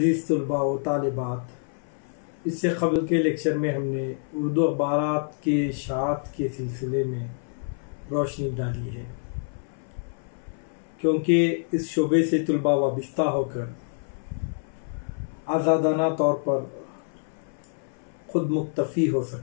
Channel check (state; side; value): silent; right; 57 dB below the other